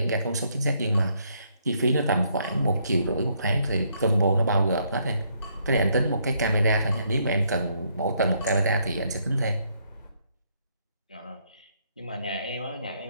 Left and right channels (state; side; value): inverted; both; correlation -0.71